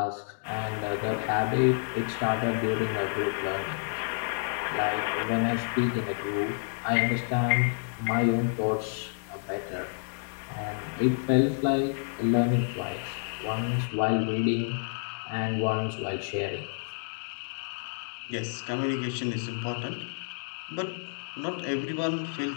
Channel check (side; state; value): right; silent; digital silence